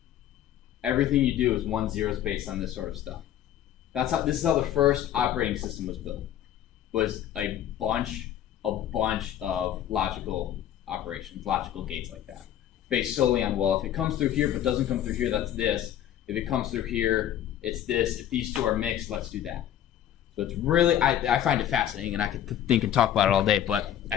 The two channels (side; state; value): right; quieter; 11.0 dB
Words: Everything you do is 1 zeros based on this sort of stuff. This is how the first operating system was built. Was a bunch of logical operations, logical gates like that, based solely on, well, if it comes through here but doesn't come through here, that's this. If it comes through here, it's this. If these two are mixed, let's do that. So it's really, I find it fascinating, and I could think and talk about it all day, but